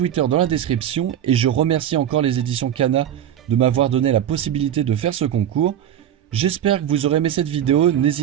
dans la description et je remercie encore les éditions Kana de m'avoir donné la possibilité de faire ce concours. J'espère que vous aurez aimé cette vidéo,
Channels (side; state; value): left; quieter; 10.5 dB